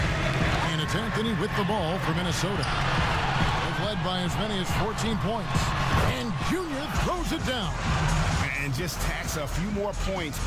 it's Anthony with the ball for Minnesota. They've led by as many as 14 points. And Junior throws it down. And just tacks a few more points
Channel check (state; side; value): identical; both; correlation 1.00